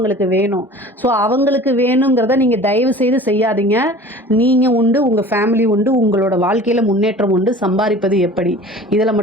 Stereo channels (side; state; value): both; normal; correlation 0.43